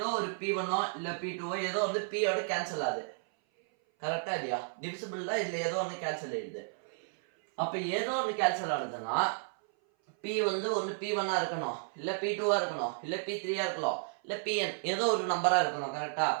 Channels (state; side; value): silent; left; 56 dB below the other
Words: ஒரு p1ஓ இல்லை p2ஓ ஏதோ வந்து pயோட கேன்சல் ஆகுது. கரெக்டா இல்லையா? டிவிசிபிள் தான், இதில் ஏதோ ஒன்று கேன்சல் ஆயிடுது. அப்போ ஏதோ ஒன்று கேன்சல் ஆகுதுன்னா p வந்து ஒன்று p1ஆ இருக்கணும், இல்லை p2ஆ இருக்கணும், இல்லை p3ஆ இருக்கலாம், இல்லை pn ஏதோ ஒரு நம்பராக இருக்கணும். கரெக்டா?